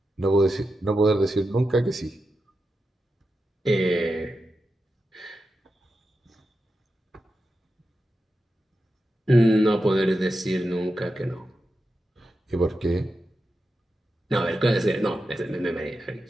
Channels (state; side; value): normal; both; correlation 0.89